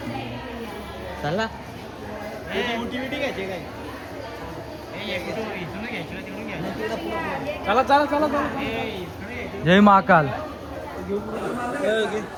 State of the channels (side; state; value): both; identical; correlation 1.00